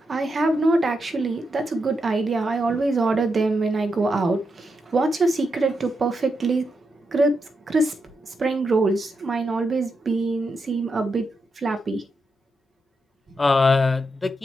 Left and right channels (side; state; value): both; normal; correlation 0.85